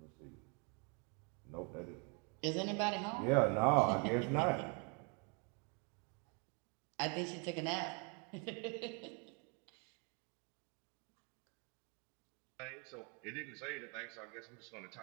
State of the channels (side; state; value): left; quieter; 35.1 dB